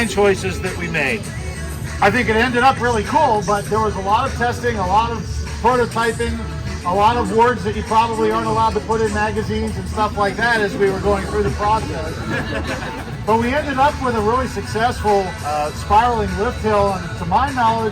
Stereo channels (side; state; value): both; identical; correlation 1.00